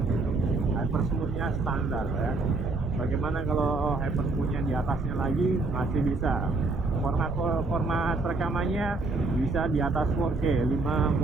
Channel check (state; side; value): quieter; left; 3.4 dB